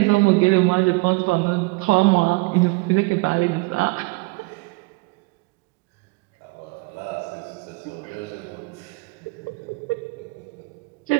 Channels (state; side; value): quieter; left; 26.3 dB